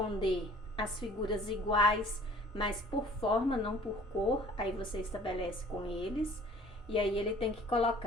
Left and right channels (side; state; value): both; normal; correlation 0.51